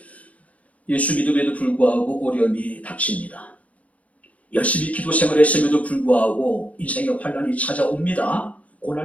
예수 믿음에도 불구하고 어려움이 닥칩니다. 열심히 기도 생활했음에도 불구하고 인생의 환난이 찾아옵니다.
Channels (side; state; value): right; late; 0.067 ms